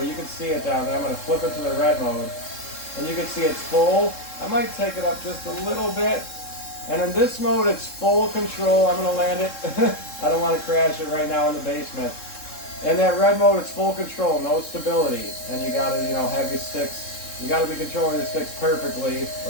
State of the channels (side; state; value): right; late; 3.7 ms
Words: you can see it down there. I'm going to flip it to the red mode, and you can see it's full. I might take it up just a little bit. And in this mode, it's full control. I'm going to land it. I don't want to crash it right now in the basement. In that red mode, it's full control, no stability. And you got to, have your sticks. You got to be controlling your sticks perfectly,